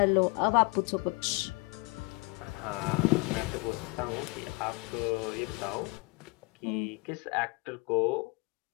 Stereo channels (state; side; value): quieter; right; 27.7 dB